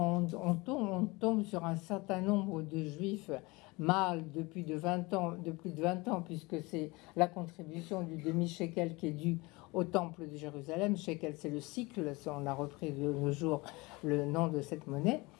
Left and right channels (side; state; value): right; quieter; 24.1 dB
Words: tombe sur un certain nombre de juifs mâles de plus de 20 ans, puisque c'est la contribution du demi-shekel qui est due au temple de Jérusalem. Shekel, c'est le cycle, on a repris de nos jours le nom de cette monnaie.